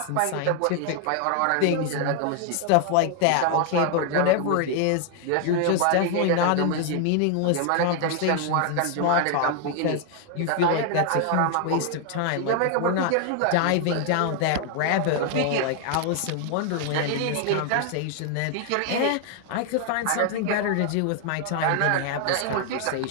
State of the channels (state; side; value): different; both; correlation 0.00